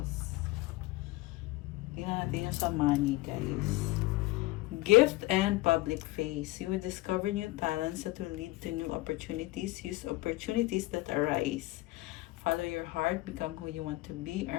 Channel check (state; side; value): quieter; right; 19.5 dB